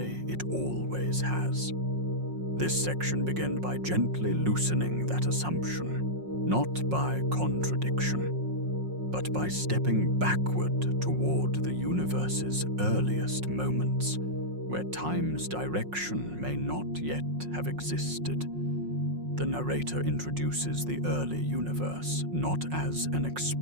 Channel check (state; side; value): late; left; 5.5 ms